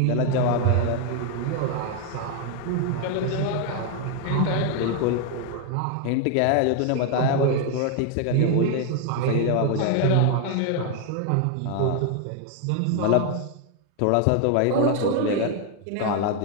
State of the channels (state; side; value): different; both; correlation 0.01